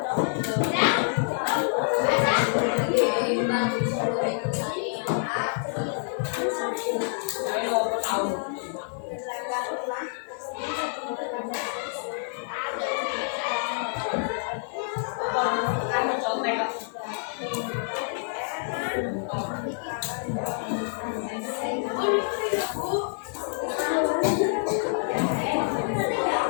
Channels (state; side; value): silent; right; digital silence